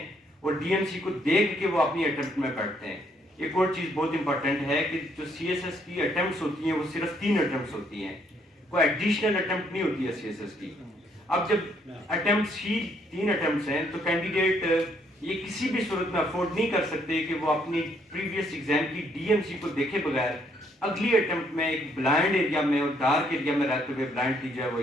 اور ڈی ایم سی کو دیکھ کے وہ اپنی اٹیمپٹ میں بیٹھتے ہیں۔ ایک اور چیز بہت امپورٹنٹ ہے کہ جو سی ایس ایس کی اٹیمپٹس ہوتی ہیں وہ صرف 3 اٹیمپٹس ہوتی ہیں، کوئی ایڈیشنل اٹیمپٹ نہیں ہوتی ہے سی ایس ایس کی۔ اب جب اٹیمپٹس ہی 3 اٹیمپٹس ہیں تو کینڈیڈیٹ یہ کسی بھی صورت میں افورڈ نہیں کر سکتے کہ وہ اپنی پریویس ایگزام کی ڈی ایم سی کو دیکھے بغیر اگلی اٹیمپٹ میں ایک بلائنڈ ایریا میں اور ڈارک ایریا میں رہتے ہوئے بلائنڈلی جو ہے وہ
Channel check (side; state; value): both; normal; correlation 0.69